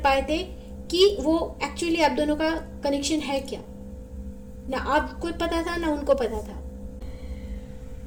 पाए थे कि वो एक्चुअली आप दोनों का कनेक्शन है क्या। ना आपको पता था ना उनको पता था।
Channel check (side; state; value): both; identical; correlation 1.00